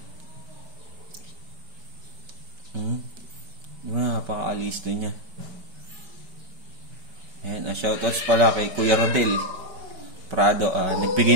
Napaka-alisto niya. Ayan, shoutouts pala kay Kuya Rodel Prado.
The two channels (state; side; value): late; left; 5.3 ms